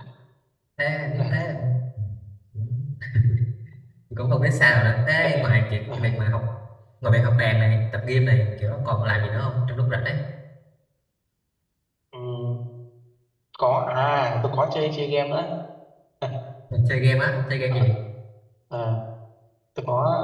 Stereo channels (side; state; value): both; identical; correlation 1.00